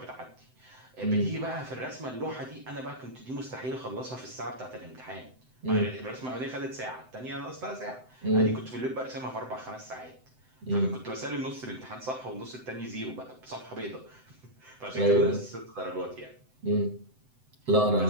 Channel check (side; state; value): left; late; 7.8 ms